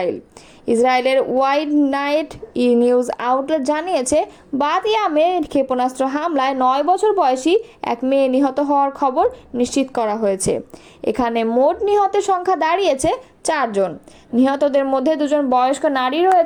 ইসরায়েলের ওয়াইড নাইট নিউজ আউটলেট জানিয়েছে, বাতিয়ামে ক্ষেপণাস্ত্র হামলায় 9 বছর বয়সী এক মেয়ে নিহত হওয়ার খবর নিশ্চিত করা হয়েছে। এখানে মোট নিহতের সংখ্যা দাঁড়িয়েছে 4 জন। নিহতদের মধ্যে 2 জন বয়স্ক নারী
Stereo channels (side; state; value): both; identical; correlation 1.00